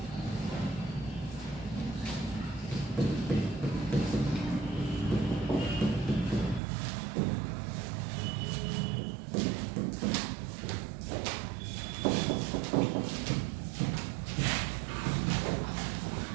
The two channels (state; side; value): drops out; left; at 6.6 s